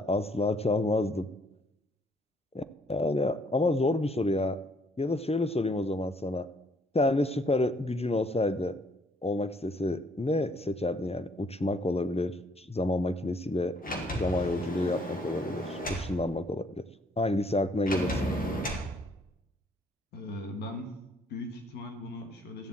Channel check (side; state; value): both; normal; correlation 0.65